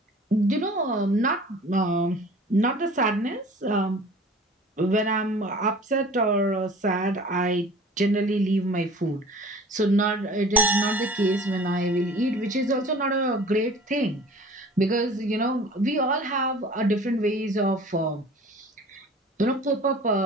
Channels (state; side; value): normal; both; correlation 0.44